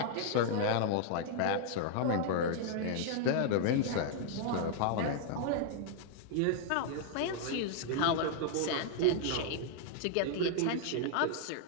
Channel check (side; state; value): both; different; correlation -0.01